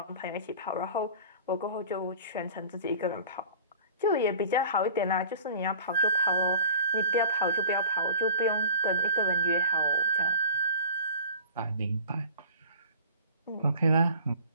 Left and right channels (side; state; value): both; inverted; correlation -0.43